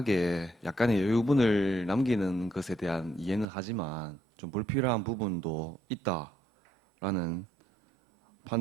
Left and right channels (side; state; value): left; drops out; at 3.5 s